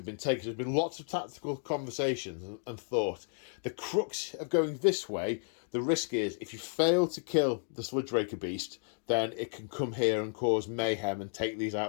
been taken? There's been lots of tactical conversations and thought. The crux of going this way, the risk is if you fail to kill the Sludge Raker beast, then it can come here and cause mayhem and take these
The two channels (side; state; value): right; silent; digital silence